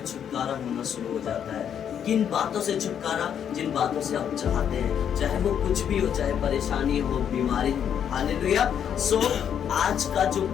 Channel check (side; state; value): right; quieter; 8.7 dB